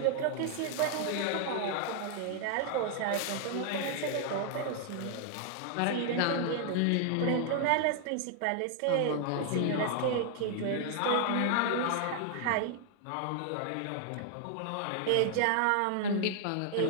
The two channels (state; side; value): different; both; correlation 0.00